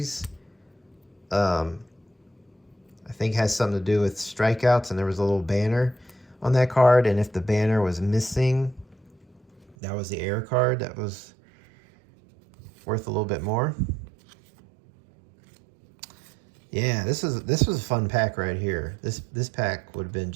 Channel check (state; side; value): drops out; left; at 9.8 s